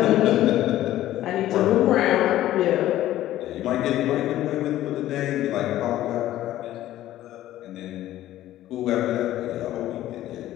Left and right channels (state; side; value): quieter; right; 14.0 dB